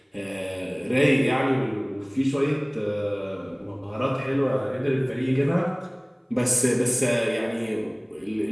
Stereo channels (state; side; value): identical; both; correlation 1.00